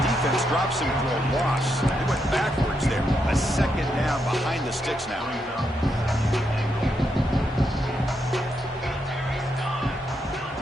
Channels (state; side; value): normal; both; correlation 0.81